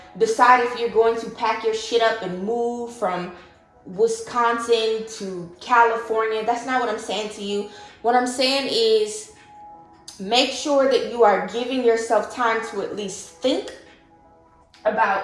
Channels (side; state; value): both; identical; correlation 1.00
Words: decide if you're going to pack your shit up and move from Wisconsin to California. That's not what I'm saying to you. What I'm saying is make sure that you are giving yourself time to at least think about